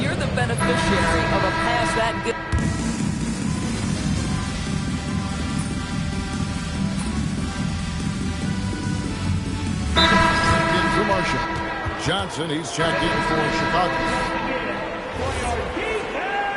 the beneficiary of a pass that good... Into Marshall. Johnson, he's checked in for Chicago.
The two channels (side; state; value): both; identical; correlation 1.00